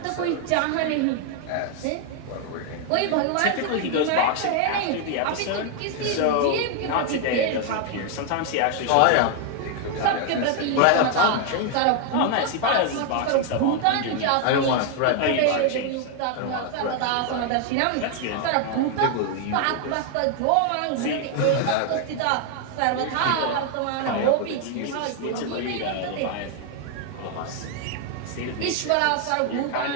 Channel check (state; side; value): different; both; correlation 0.00